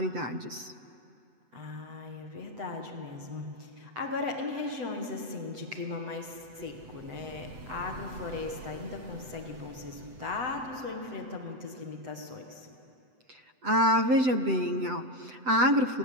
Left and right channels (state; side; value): late; left; 7.9 ms